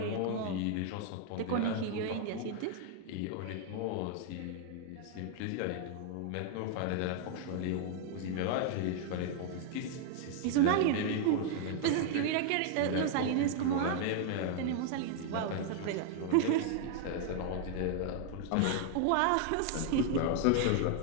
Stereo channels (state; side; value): different; both; correlation 0.00